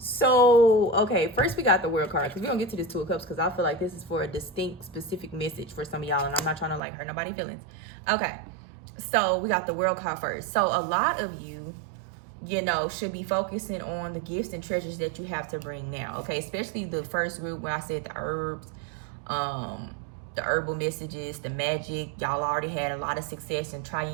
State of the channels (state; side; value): drops out; left; at 6.8 s